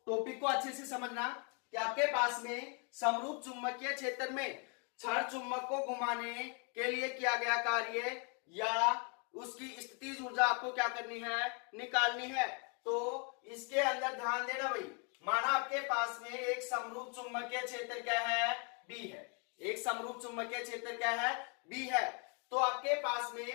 टॉपिक को अच्छे से समझना कि आपके पास में समरूप चुंबकीय क्षेत्र में छड़ चुंबक को घुमाने के लिए किया गया कार्य या उसकी स्थितिज ऊर्जा आपको क्या करनी है, निकालनी है। तो इसके अंदर ध्यान देना भाई, माना आपके पास में एक समरूप चुंबकीय क्षेत्र क्या है, B है। एक समरूप चुंबकीय क्षेत्र क्या है, B है। तो आपके पास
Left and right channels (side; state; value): right; quieter; 36.4 dB